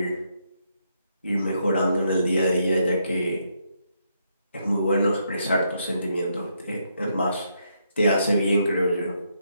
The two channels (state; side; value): inverted; both; correlation -0.77